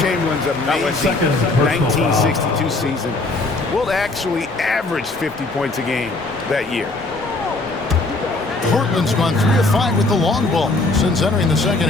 amazing 1962 season will actually average 50 points a game that year. Portland's gone 3 of 5 with the long ball since entering the second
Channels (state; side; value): quieter; right; 3.2 dB